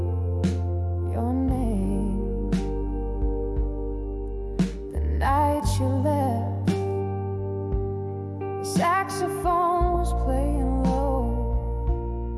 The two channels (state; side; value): identical; both; correlation 1.00